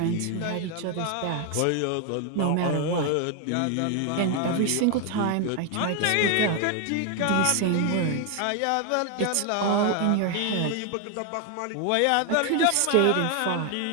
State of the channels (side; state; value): both; different; correlation 0.01